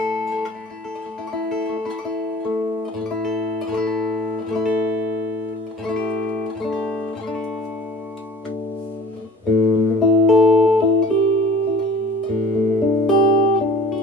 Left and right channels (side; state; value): both; normal; correlation 0.46